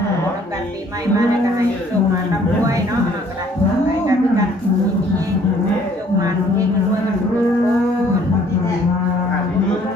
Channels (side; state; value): both; normal; correlation 0.59